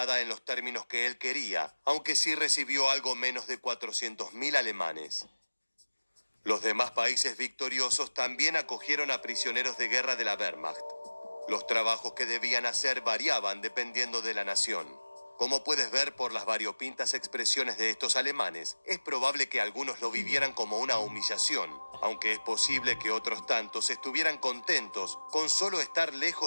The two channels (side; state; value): both; inverted; correlation -1.00